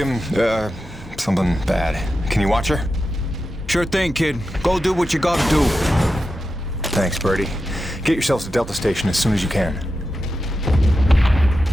something bad. Can you watch her? Sure thing, kid. Go do what you gotta do. Thanks, Birdie. Get yourselves to Delta Station as soon as you can.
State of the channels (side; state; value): both; normal; correlation 0.90